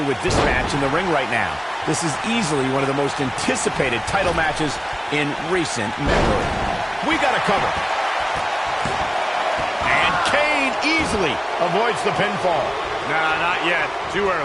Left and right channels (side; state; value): both; identical; correlation 1.00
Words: with this match in the ring right now. This is easily one of the most anticipated title matches in recent memory. We got a cover. And Kane easily avoids the pinfall. Nah, not yet. Too